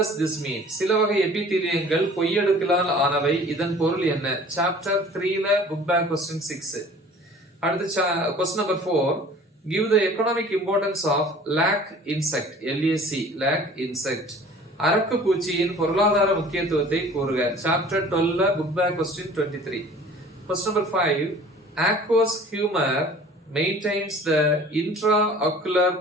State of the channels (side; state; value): both; normal; correlation 0.47